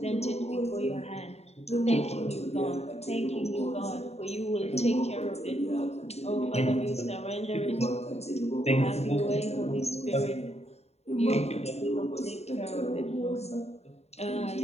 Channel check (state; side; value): late; right; 0.31 ms